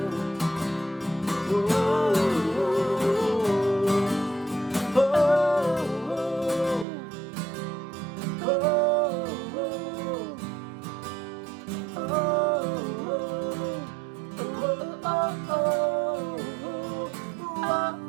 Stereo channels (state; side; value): drops out; left; at 6.9 s